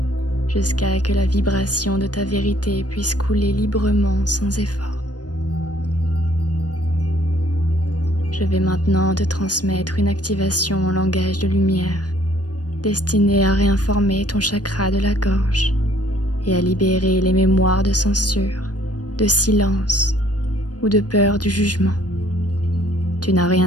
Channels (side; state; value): right; late; 0.69 ms